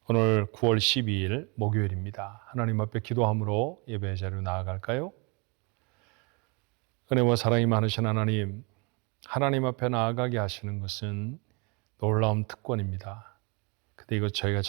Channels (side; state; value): left; quieter; 31.2 dB